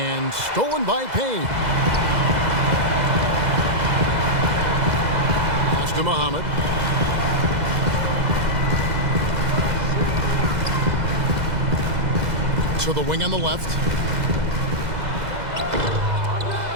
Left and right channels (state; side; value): late; left; 2.0 ms